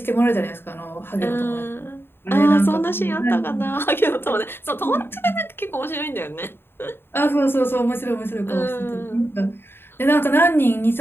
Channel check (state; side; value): late; right; 0.11 ms